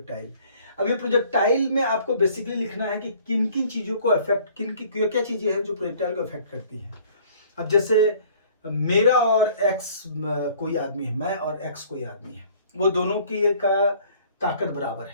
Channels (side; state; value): both; inverted; correlation -0.54